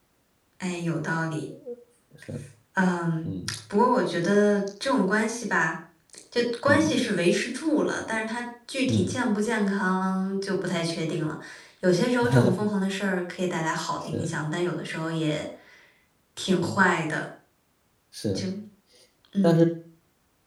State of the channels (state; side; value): identical; both; correlation 1.00